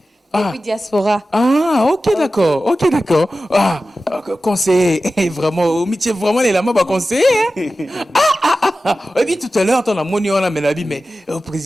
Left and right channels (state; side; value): normal; both; correlation 0.94